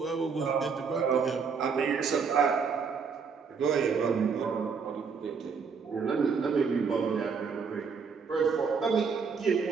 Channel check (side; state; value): left; quieter; 5.7 dB